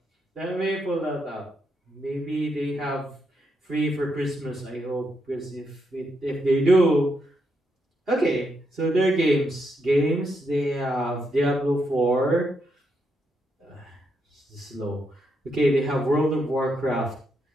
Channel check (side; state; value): both; normal; correlation 0.80